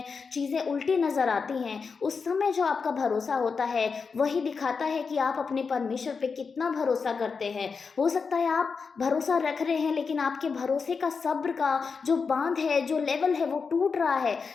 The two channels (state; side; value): quieter; right; 5.2 dB